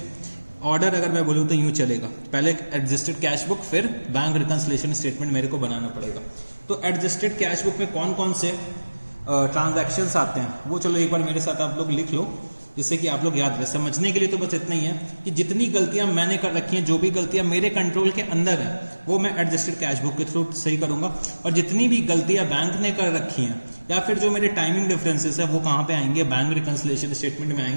ऑर्डर अगर मैं बोलूं तो यूं चलेगा, पहले एडजस्टेड कैश बुक फिर बैंक रिकंसिलिएशन स्टेटमेंट मेरे को बनाना पड़ेगा। तो एडजस्टेड कैश बुक में कौन कौन से ट्रांजैक्शंस आते हैं वो चलो एक बार मेरे साथ आप लोग लिख लो, जिससे कि आप लोग याद रहे। समझने के लिए तो बस इतना ही है कि जितनी गलतियां मैंने कर रखी हैं, जो भी गलतियां मेरे कंट्रोल के अंदर है वो मैं एडजस्टेड कैश बुक के थ्रू सही करूंगा। और जितनी भी गलतियां बैंक ने कर रखी हैं या फिर जो मेरे टाइमिंग डिफरेंसेस है वो कहां पे आएंगे, बैंक रिकंसिलिएशन स्टेटमेंट में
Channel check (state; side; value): inverted; both; correlation -1.00